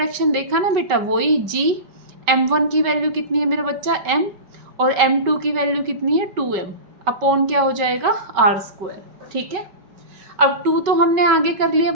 देखा ना बेटा, वही g, m1 की वैल्यू कितनी है मेरा बच्चा? m, और m2 की वैल्यू कितनी है? 2m अपॉन क्या हो जाएगा? r². ठीक है, अब 2 तो हमने आगे कर लिया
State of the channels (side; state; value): left; late; 5.3 ms